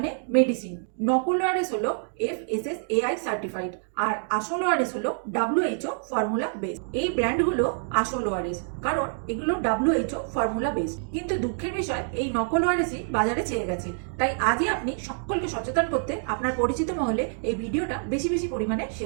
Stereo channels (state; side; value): silent; left; digital silence